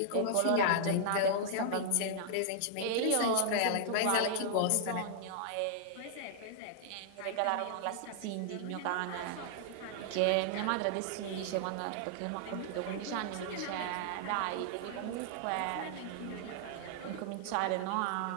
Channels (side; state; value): both; different; correlation -0.01